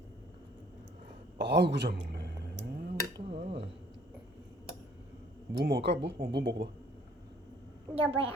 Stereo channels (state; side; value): normal; both; correlation 0.58